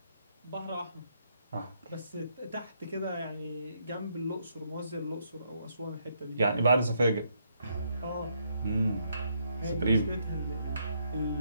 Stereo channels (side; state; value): both; inverted; correlation -0.75